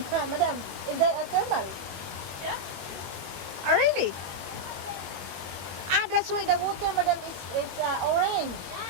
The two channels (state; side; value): late; left; 21 ms